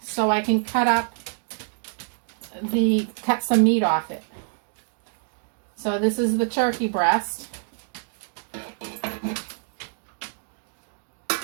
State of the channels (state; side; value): silent; left; digital silence